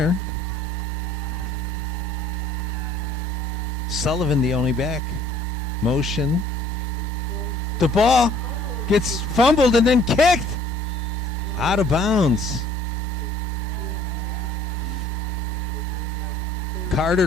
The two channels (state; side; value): normal; both; correlation 0.57